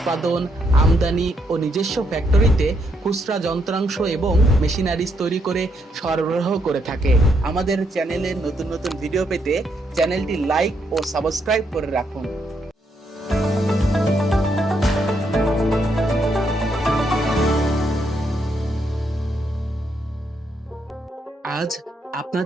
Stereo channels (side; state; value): both; normal; correlation 0.76